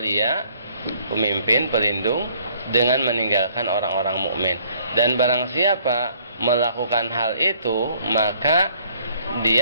pemimpin, pelindung, dengan meninggalkan orang-orang mukmin. Dan barang siapa melakukan hal itu, maka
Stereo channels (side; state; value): both; inverted; correlation -0.61